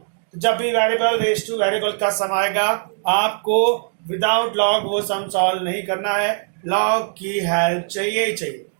तो जब भी वेरिएबल रेज टू वेरिएबल का सम आएगा आपको विदाउट लॉग वो सम सॉल्व नहीं करना है, लॉग की हेल्प चाहिए ही चाहिए।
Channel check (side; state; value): left; silent; 65 dB below the other